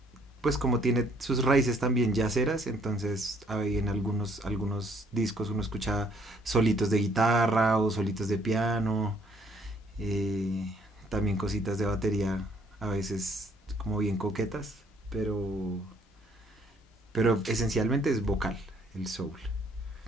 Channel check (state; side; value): normal; both; correlation 0.64